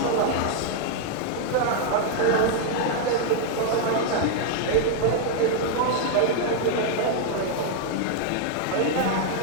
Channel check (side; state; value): both; different; correlation 0.00